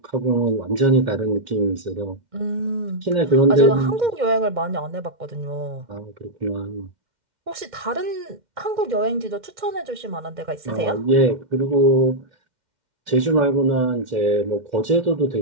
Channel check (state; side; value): late; left; 2.1 ms